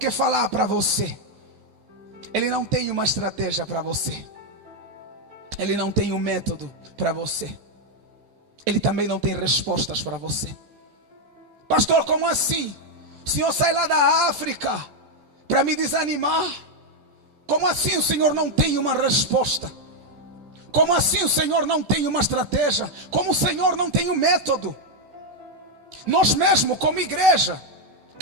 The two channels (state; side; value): late; left; 14 ms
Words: falar para você. Ele não tem uma estratégia para você. Ele não tem um método para você. Ele também não tem respostas para você. Pastor, como assim? O Senhor sai lá da África para me desanimar? Como assim o Senhor não tem uma resposta? Como assim o Senhor não tem uma estratégia? Como o Senhor não tem um método? Nós mesmo, como igreja,